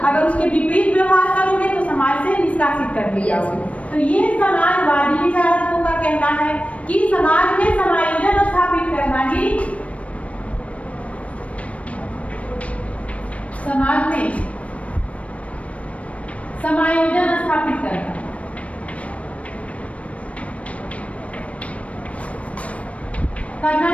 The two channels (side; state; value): right; late; 0.064 ms